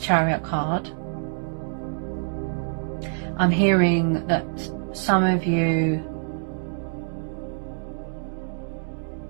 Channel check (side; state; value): left; silent; digital silence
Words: card, I'm hearing that some of you,